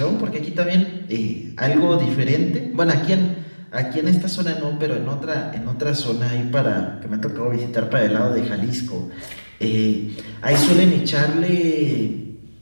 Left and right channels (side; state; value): both; inverted; correlation -1.00